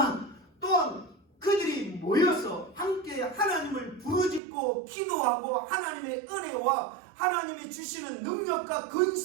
또한 그들이 모여서 함께 하나님을 부르짖고 기도하고 하나님의 은혜와 하나님이 주시는 능력과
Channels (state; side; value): drops out; left; at 4.4 s